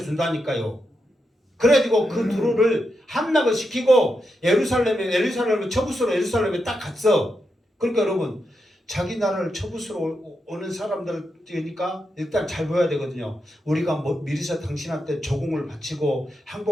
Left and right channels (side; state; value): both; normal; correlation 0.85